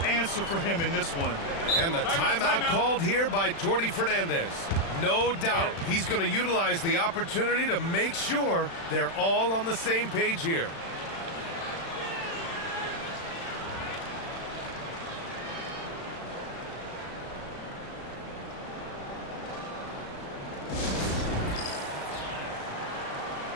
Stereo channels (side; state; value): right; late; 36 ms